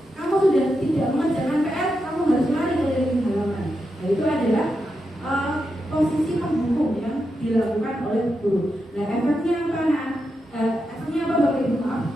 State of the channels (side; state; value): both; normal; correlation 0.86